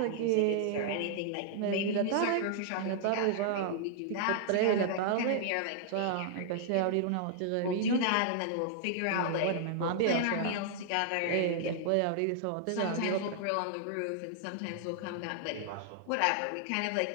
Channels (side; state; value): both; different; correlation -0.01